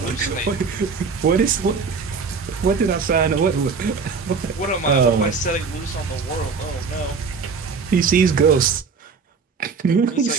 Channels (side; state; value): left; quieter; 5.2 dB